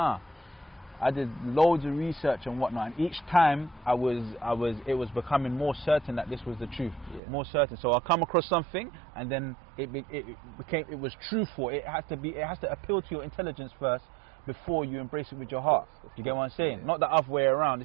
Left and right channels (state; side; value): drops out; left; at 7.2 s